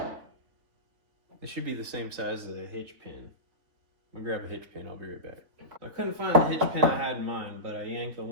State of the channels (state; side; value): late; left; 3.5 ms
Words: this should be the same size as a hitch pin. I'm gonna grab a hitch pin, I'll be right back. I couldn't find the hitch pin I had in mind, but I yanked the